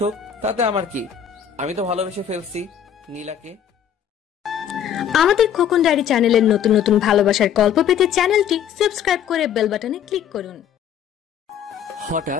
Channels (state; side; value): quieter; right; 9.1 dB